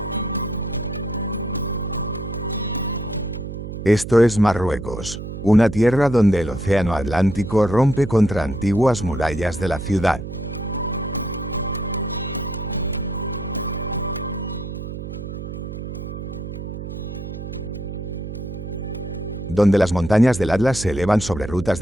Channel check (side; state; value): right; noise; hum, 8 dB below the sound